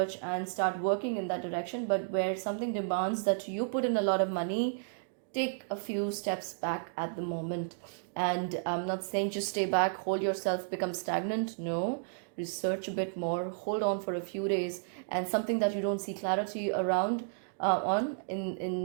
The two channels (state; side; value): silent; left; digital silence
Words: and start working in that direction. But where something demands that you put in a lot of money, take a few steps back at the moment. And I'm not saying just stay back, hold yourself, become stagnant. No, research a bit more, hold on for a few days. And something that you don't see clarity around on